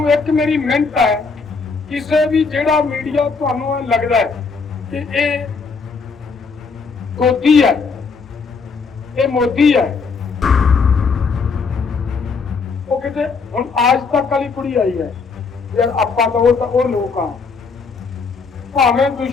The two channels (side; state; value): right; quieter; 4.8 dB